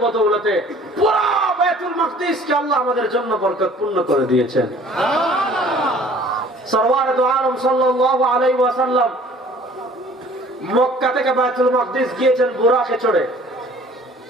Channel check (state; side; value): normal; both; correlation 0.52